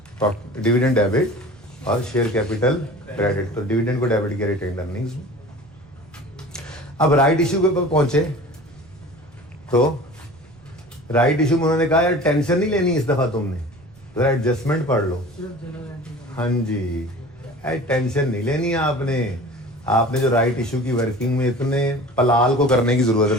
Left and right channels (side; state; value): right; noise; rumble, 26 dB below the sound